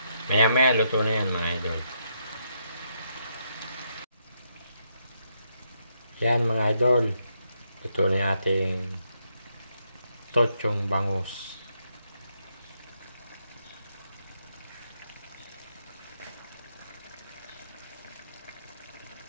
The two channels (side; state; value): both; inverted; correlation -0.78